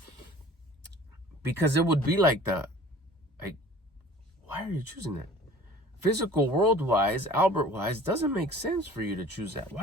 because it would be like why are you choosing that? Physical world-wise, Albert-wise, doesn't make sense for you to choose that.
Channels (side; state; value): both; normal; correlation 0.46